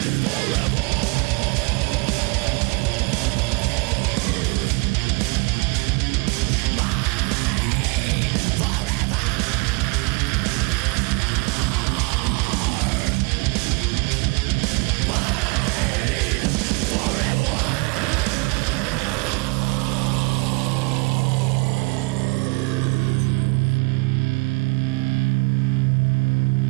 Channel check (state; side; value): quieter; left; 29.0 dB